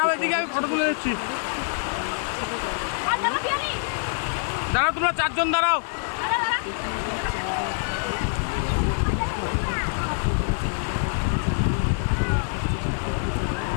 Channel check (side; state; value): right; silent; digital silence